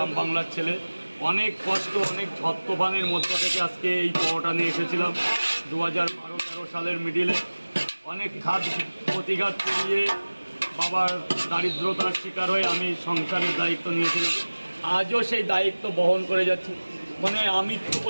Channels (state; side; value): inverted; both; correlation -1.00